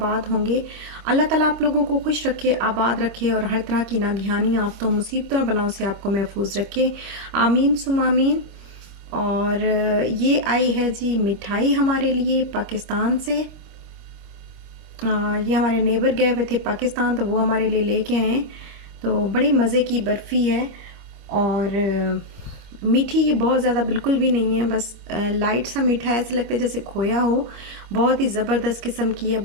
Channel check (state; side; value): late; left; 25 ms